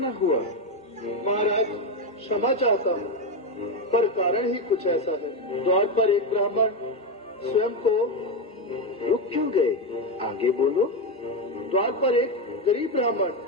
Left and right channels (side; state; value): both; normal; correlation 0.10